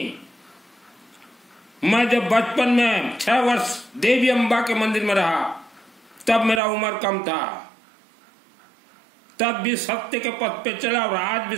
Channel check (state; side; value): drops out; left; at 6.6 s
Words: मैं जब बचपन में 6 वर्ष देवी अम्बा के मंदिर में रहा, तब मेरा उम्र कम था, तब भी सत्य के पथ पे चला और आज भी